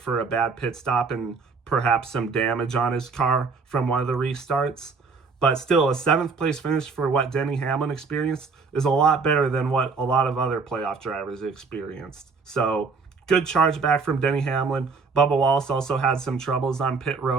a bad pit stop and perhaps some damage on his car from one of the restarts. But still, a 7th place finish for what Denny Hamlin experienced is a lot better than what a lot of other playoff drivers experienced. So, good charge back from Denny Hamlin. Bubba Wallace also had some troubles on pit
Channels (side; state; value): left; quieter; 4.7 dB